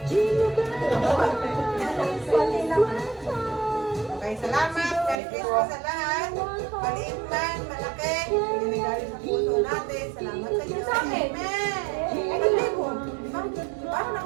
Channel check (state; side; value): drops out; left; at 5.2 s